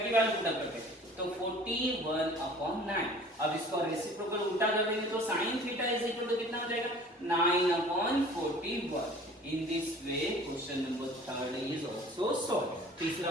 पुट करते हैं तो 41/9। अब इसको रेसिप्रोकल उल्टा कर देंगे तो sin theta is equal to कितना हो जाएगा 9/41। In this way question number 3 is also solve. तीसरा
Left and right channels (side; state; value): both; normal; correlation 0.47